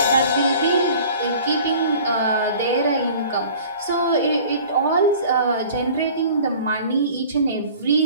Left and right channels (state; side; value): inverted; both; correlation -0.46